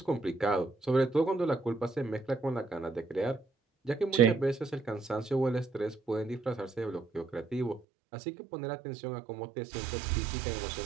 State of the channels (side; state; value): left; drops out; at 7.8 s